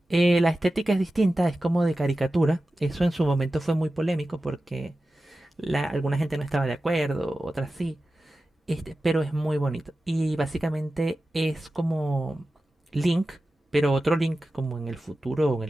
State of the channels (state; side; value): normal; both; correlation 0.94